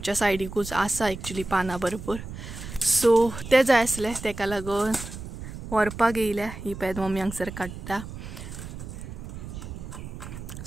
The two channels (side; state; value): right; noise; rumble, 10 dB below the sound